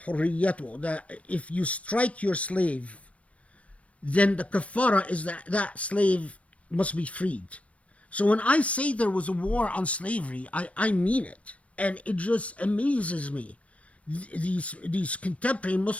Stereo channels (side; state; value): right; late; 0.064 ms